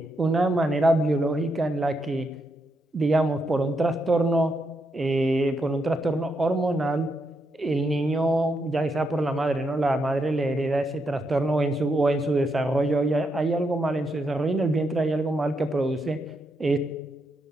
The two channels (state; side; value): normal; both; correlation 0.81